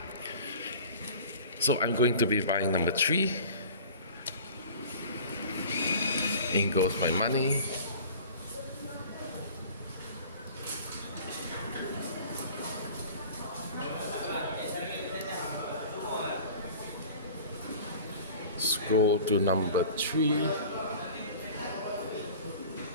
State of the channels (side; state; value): both; inverted; correlation -0.43